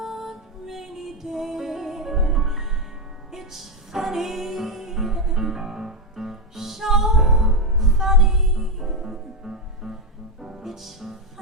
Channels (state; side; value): normal; both; correlation 0.07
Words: rainy day. It's funny, so funny. It's